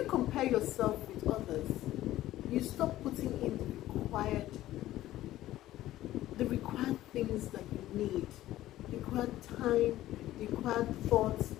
compare yourself with others, you stop putting in the required things that you need, the required time, the required thoughts,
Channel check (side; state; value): right; quieter; 14.7 dB